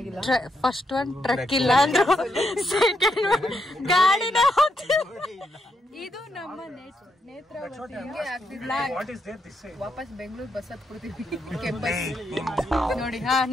ಫಸ್ಟ್ ಒನ್ ಟ್ರಕ್ ಇಲ್ಲ ಅಂದ್ರು, ಸೆಕೆಂಡ್ ಒನ್ ಗಾಡಿನ ಇದು ನಮ್ಮ ನೇತ್ರಾವತಿ. ವಾಪಸ್ ಬೆಂಗಳೂರು ಬಸ್ ಹತ್ಕೊಡ್ತೀವಿ. ಕೆಂಪಸ್ ನೋಡಿ. ಹಾ,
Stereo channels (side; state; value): both; normal; correlation 0.80